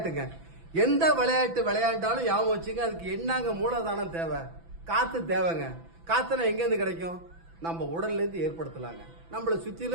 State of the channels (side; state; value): left; late; 6.0 ms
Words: எந்த விளையாட்டு விளையாண்டாலும் ஞாபகம் வச்சுங்க, அதுக்கு என்னங்க மூலதானம் தேவை? காத்து தேவைங்க. காத்துனா எங்கேருந்து கிடைக்கும்? நம்ம உடல்ல இருந்து ஏற்படுத்தலாங்க. நம்மளை